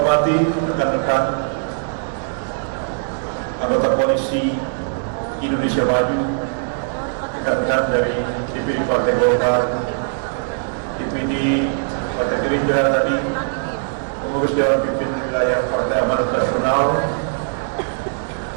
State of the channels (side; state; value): left; silent; digital silence